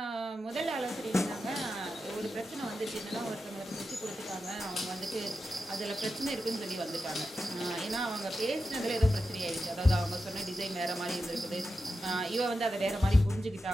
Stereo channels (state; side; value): normal; both; correlation 0.90